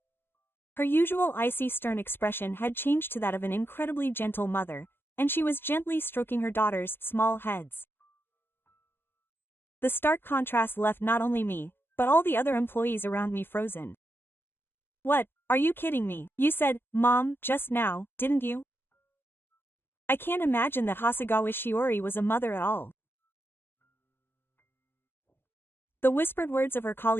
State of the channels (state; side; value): late; right; 0.10 ms